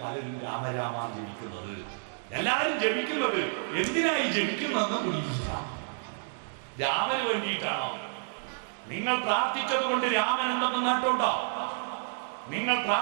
പലരും രാമരാമ ജപിക്കുന്നത്. എല്ലാവരും ജപിക്കുന്നത് എന്തിനായി ജപിക്കുന്നതെന്ന് പിടിക്കില്ല. രാമന് വേണ്ടിയിട്ടാണോ? നിങ്ങൾ പ്രാർത്ഥിച്ചത് കൊണ്ട് രാമൻ എന്തെന്ന് നേട്ടമുണ്ടോ? നിങ്ങൾ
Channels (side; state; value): left; silent; digital silence